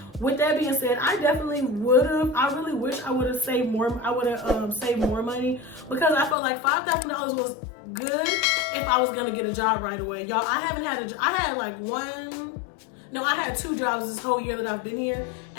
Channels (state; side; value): drops out; right; at 6.4 s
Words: with that being said, I definitely I really wish I would have saved more. I would have saved more money, because I felt like $5,000 was good if I was gonna get a job right away. Y'all, I haven't had I had 2 jobs this whole year that I've been here,